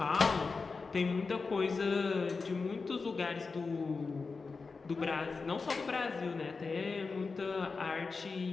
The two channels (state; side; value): quieter; right; 4.4 dB